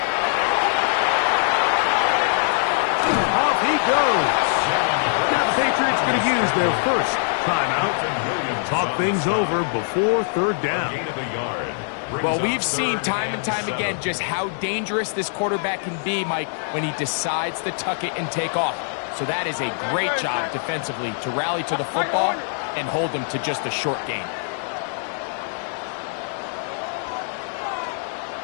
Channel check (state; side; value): silent; right; digital silence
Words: Off he goes. Now the Patriots going to use their first timeout. Talk things over before 3rd down. Gain of a yard. Well, we've seen time and time again just how dangerous this quarterback can be, Mike, when he decides to tuck it and take off. So that is a great job defensively to rally to the football and hold him to just a short gain.